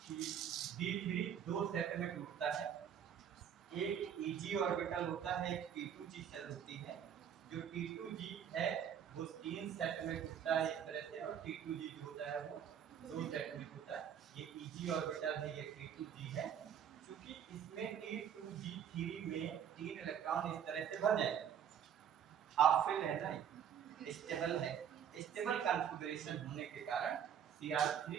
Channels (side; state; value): left; quieter; 8.8 dB